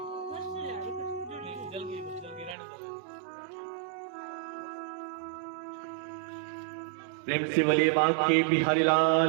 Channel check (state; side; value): drops out; left; at 2.6 s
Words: जल्दी जल्दी जल्दी रहने दो। प्रेम से बोलिए मां की